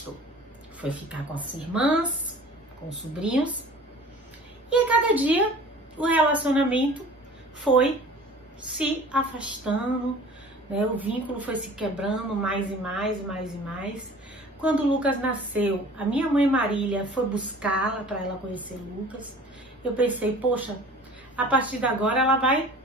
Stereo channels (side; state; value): both; normal; correlation 0.45